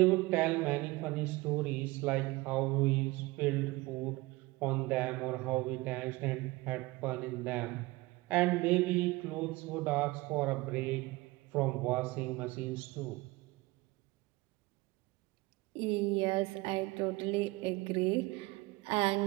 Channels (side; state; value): left; quieter; 21.4 dB